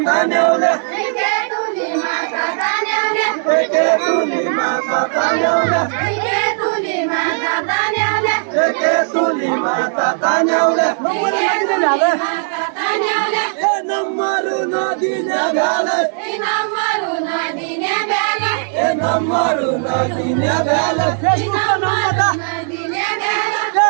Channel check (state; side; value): silent; left; digital silence